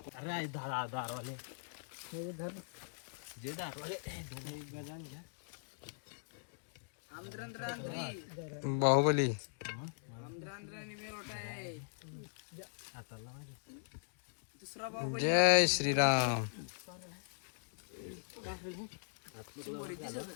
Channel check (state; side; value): silent; right; digital silence